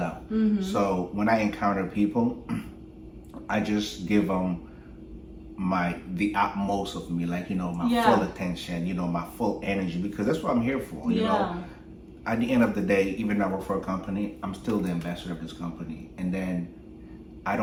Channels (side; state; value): both; identical; correlation 1.00